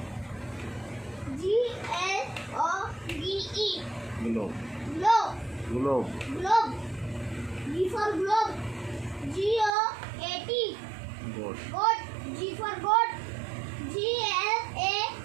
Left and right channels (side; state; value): left; drops out; at 9.7 s